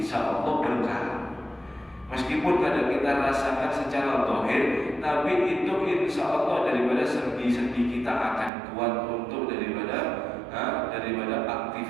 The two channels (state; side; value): drops out; left; at 8.5 s